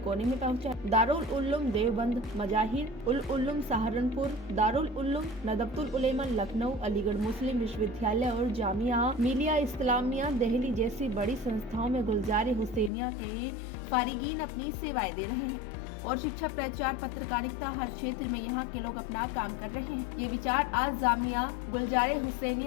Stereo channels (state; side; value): drops out; right; at 12.9 s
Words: में पहुंचा। दारुल उल्लूम देवबंद, मजाहिर उल उल्लूम सहारनपुर, दारुल उल्लूम नदबतुल उलेमा लखनऊ, अलीगढ़ मुस्लिम विश्वविद्यालय और जामिया मिलिया इस्लामिया दिल्ली जैसी बड़ी संस्थाओं में गुलजारे हुसैनिया के फारिगीन अपनी सेवाएं दे रहे हैं और शिक्षा, प्रचार, पत्रकारिता हर क्षेत्र में यहाँ के लोग अपना काम कर रहे हैं। ये विचार आज जामिया गुलजारे